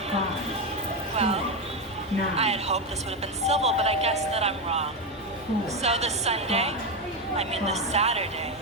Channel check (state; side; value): normal; both; correlation 0.11